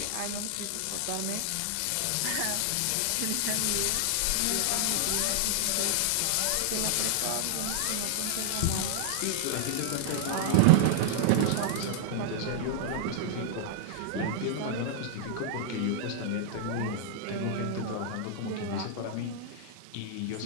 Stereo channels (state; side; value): different; both; correlation -0.01